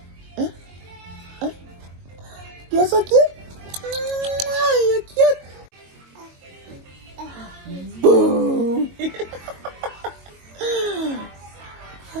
Hein? You're so cute. You're cute. Boom.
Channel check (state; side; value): late; left; 22 ms